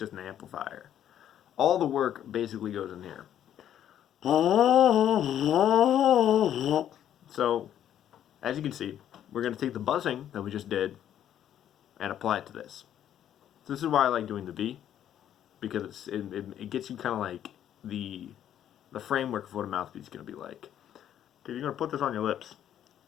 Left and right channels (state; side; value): quieter; right; 10.6 dB